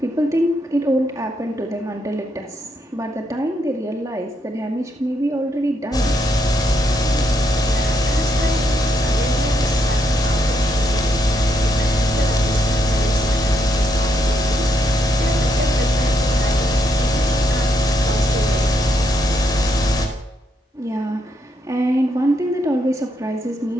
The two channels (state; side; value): normal; both; correlation 0.77